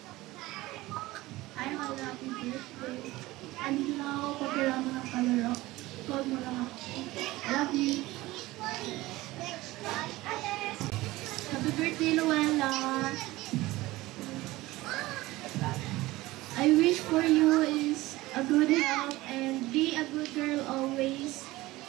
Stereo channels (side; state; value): left; quieter; 18.8 dB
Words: have a happy birthday. Andito na ako pag kailangan mo ng kalaro. Call mo lang ako. Love you. Happy birthday, Luella. I wish for you is a good health and be a good girl always.